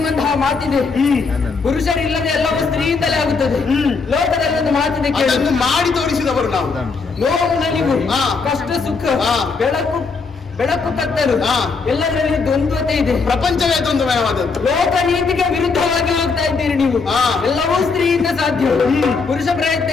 ಮಾತಿದೆ. ಪುರುಷರಿಲ್ಲದೆ ಎಲ್ಲವೂ ಸ್ತ್ರೀಯಿಂದಲೇ ಆಗುತ್ತದೆ. ಲೋಕದಲ್ಲಿ ಒಂದು ಮಾತಿದೆ, ಮಾಡಿ ತೋರಿಸಿದವರು ನಾವು. ನೋವು ನಲಿವು, ಕಷ್ಟ ಸುಖ, ಬೆಳಕು ಕತ್ತಲು ಎಲ್ಲದರಲ್ಲಿ ದ್ವಂದ್ವತೆ ಇದೆ. ಪ್ರಪಂಚವೇ ದ್ವಂದ್ವಮಯವಾದದ್ದು. ಲೋಕ ನೀತಿಗೆ ವಿರುದ್ಧವಾಗಿ ಹೋಗ್ತಾ ಇದ್ದೀರಿ ನೀವು. ಎಲ್ಲವೂ ಸ್ತ್ರೀಯಿಂದ ಸಾಧ್ಯ. ಪುರುಷ ಪ್ರಯತ್ನ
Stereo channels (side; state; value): right; quieter; 4.7 dB